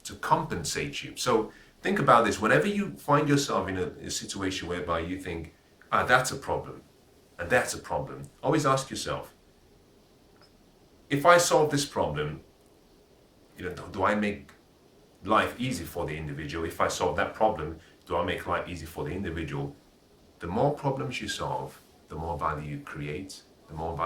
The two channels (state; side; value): identical; both; correlation 1.00